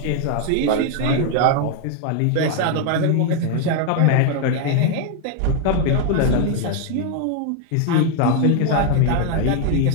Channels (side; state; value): both; different; correlation 0.00